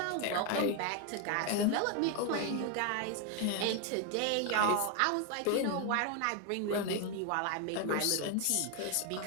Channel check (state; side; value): different; both; correlation 0.01